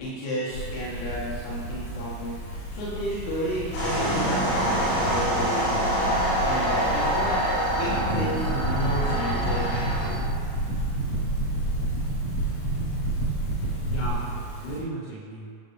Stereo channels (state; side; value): late; right; 38 ms